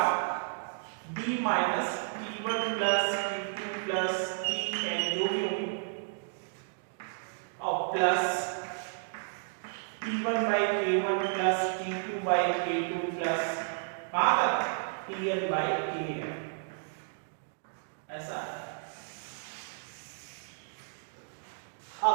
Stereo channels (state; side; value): silent; left; digital silence